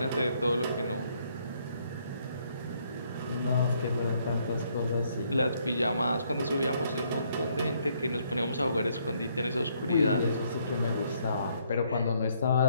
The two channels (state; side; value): inverted; both; correlation -0.70